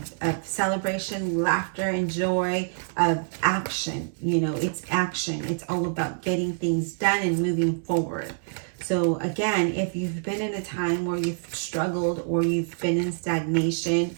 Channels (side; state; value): left; silent; digital silence